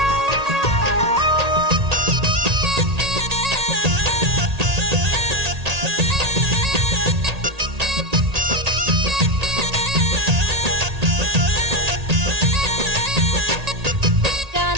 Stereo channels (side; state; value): left; late; 1.8 ms